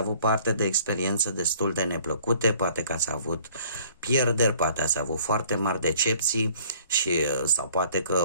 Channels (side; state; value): both; inverted; correlation -0.55